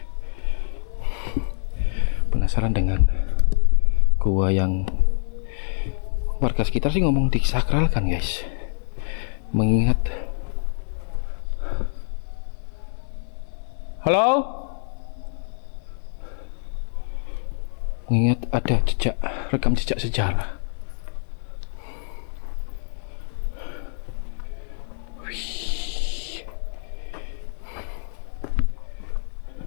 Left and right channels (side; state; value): right; silent; digital silence